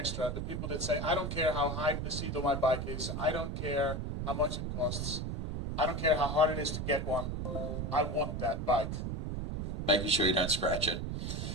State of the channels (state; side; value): noise; right; rumble, 3 dB below the sound